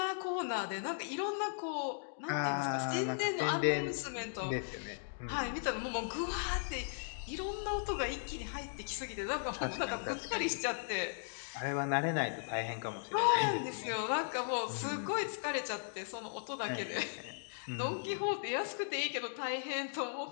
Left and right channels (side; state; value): right; silent; digital silence